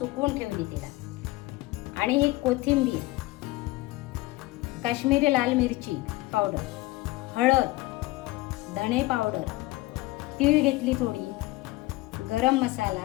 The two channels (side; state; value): right; quieter; 20.0 dB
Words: ठेवली तिला. आणि ही कोथिंबीर, काश्मीरी लाल मिरची पावडर, हळद, धणे पावडर, तीळ घेतली थोडी, गरम